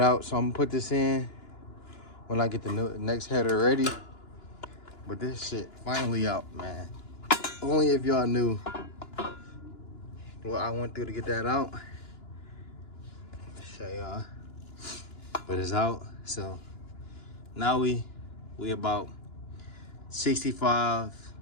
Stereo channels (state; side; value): late; right; 2.9 ms